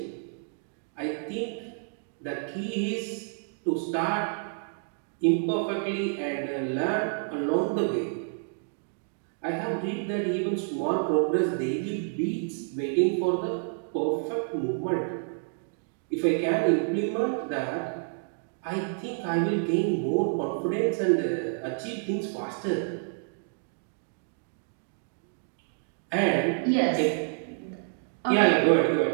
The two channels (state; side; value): silent; left; 59 dB below the other